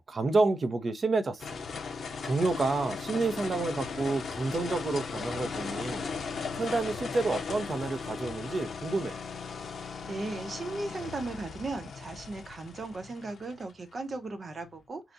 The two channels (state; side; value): normal; both; correlation 0.87